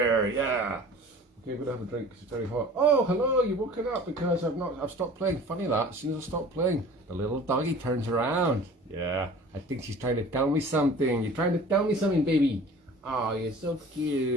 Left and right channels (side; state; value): both; normal; correlation 0.45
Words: yeah. Okay, we're gonna have a drink because it's very hot. Oh, hello, you've woken up because I've stopped playing. Funny that, as soon as I stop playing, the little doggy turns around. Yeah, I think she's trying to tell me something. You're trying to tell me something, baby. Oh, you're so